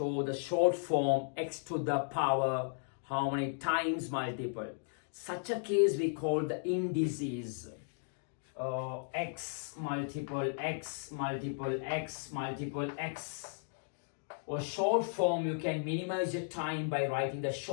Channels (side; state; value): right; silent; digital silence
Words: the short form x to the power how many times multiple. Such a case we call the indices. X multiple x multiple x multiple x. Or short form, you can minimize your time by writing the